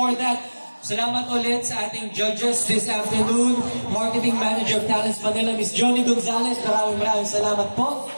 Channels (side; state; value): both; inverted; correlation -1.00